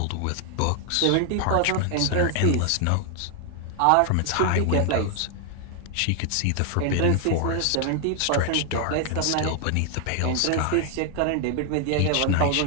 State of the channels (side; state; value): both; different; correlation 0.00